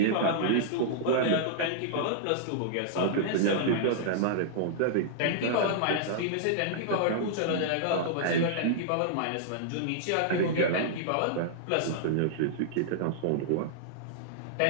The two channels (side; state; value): both; different; correlation -0.01